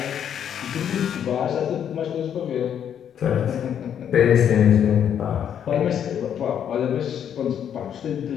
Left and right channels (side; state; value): right; quieter; 9.0 dB